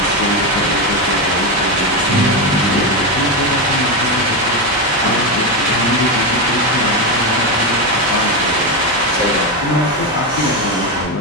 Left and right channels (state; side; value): noise; left; hum, 18 dB below the sound